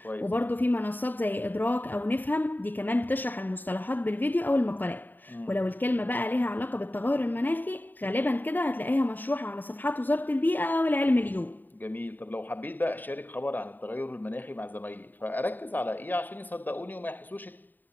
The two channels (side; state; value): right; late; 0.089 ms